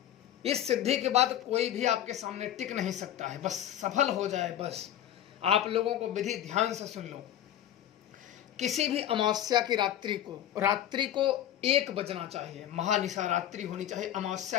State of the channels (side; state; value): right; quieter; 11.4 dB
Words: इस सिद्धि के बाद कोई भी आपके सामने टिक नहीं सकता है, बस सफल हो जाए। बस आप लोगों को विधि ध्यान से सुन लो। किसी भी अमावस्या की रात्रि को 1 बजना चाहिए, महानिशा रात्रि होनी चाहिए,